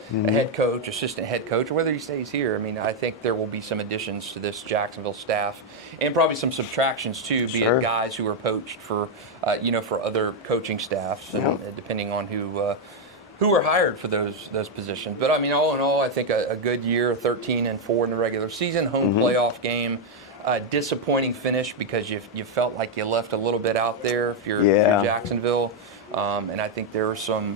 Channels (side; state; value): both; normal; correlation 0.01